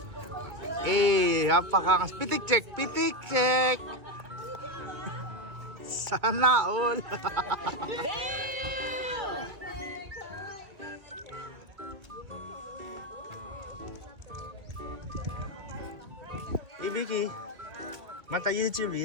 Napakakas. Pitik check. Sana all. Ibiki. Mata YouTube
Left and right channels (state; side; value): late; left; 2.3 ms